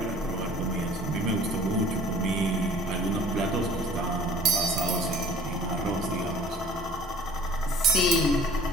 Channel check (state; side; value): normal; both; correlation 0.50